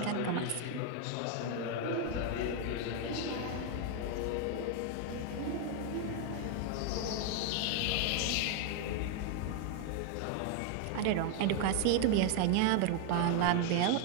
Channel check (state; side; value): different; both; correlation 0.01